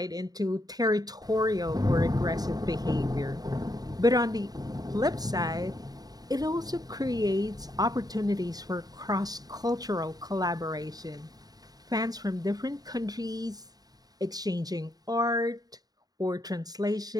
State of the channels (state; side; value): late; left; 0.18 ms